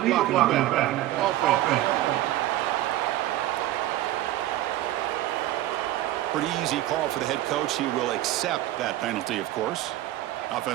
blocking back. Offense. Pretty easy call for the head coach. He will accept that penalty, of course.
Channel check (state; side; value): quieter; left; 14.7 dB